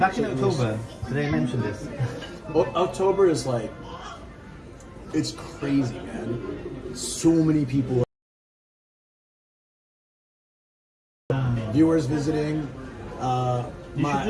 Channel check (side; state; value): both; identical; correlation 1.00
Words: in October. Did I mention this? October is like, it's crazy, man. So many people. Viewers visiting. You should